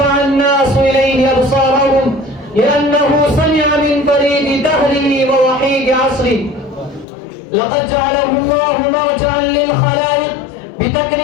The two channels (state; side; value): drops out; right; at 7.1 s